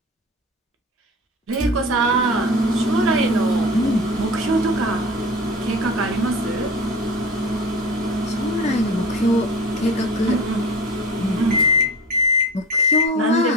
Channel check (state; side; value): normal; both; correlation 0.35